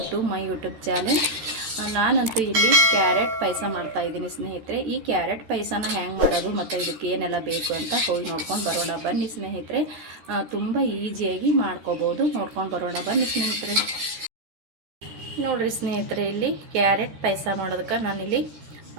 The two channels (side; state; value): left; late; 13 ms